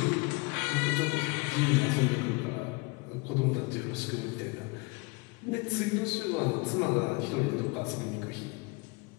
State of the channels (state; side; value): quieter; right; 27.8 dB